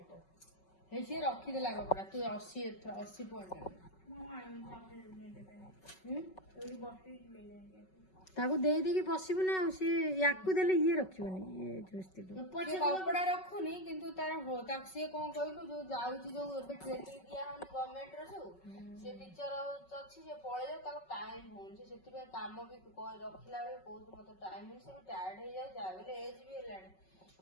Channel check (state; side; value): late; right; 5.3 ms